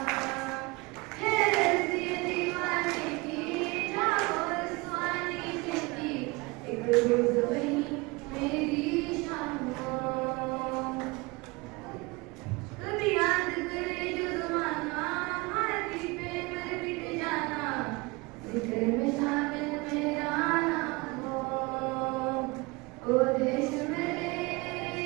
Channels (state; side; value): quieter; left; 25.2 dB